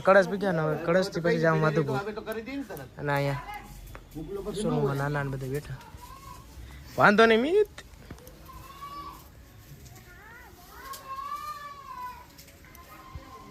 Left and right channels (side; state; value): both; identical; correlation 1.00